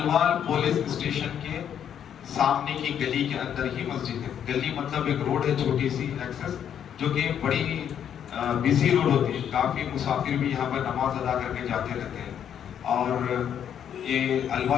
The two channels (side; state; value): right; quieter; 9.1 dB